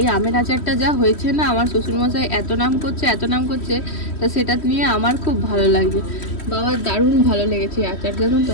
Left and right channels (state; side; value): late; right; 3.1 ms